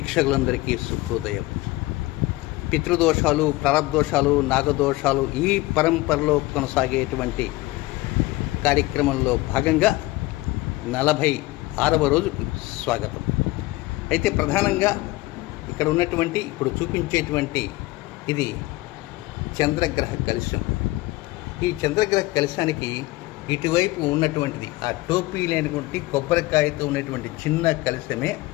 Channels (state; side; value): quieter; right; 19.8 dB